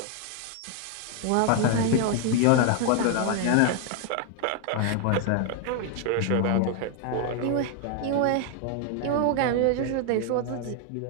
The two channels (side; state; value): both; different; correlation 0.00